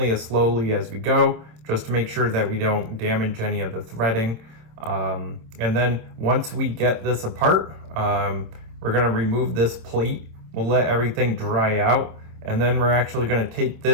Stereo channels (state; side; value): late; left; 27 ms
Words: as slowly as we go, just to make sure that we don't damage any of the threading. And then once we get this apart, we're gonna remove this plate. We'll let everything dry out, and then we're actually gonna take